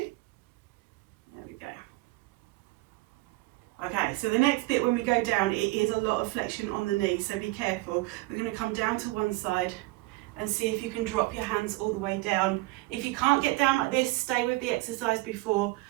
There we go. Okay, so the next bit when we go down, it is a lot of flexion on the knee, so be careful. We're going to come down to one side and see if you can drop your hands all the way down. If you can't get down like this, stay with the exercise before.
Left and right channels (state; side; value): quieter; left; 21.5 dB